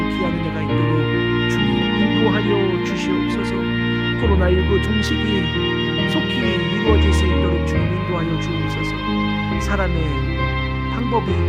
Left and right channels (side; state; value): both; identical; correlation 1.00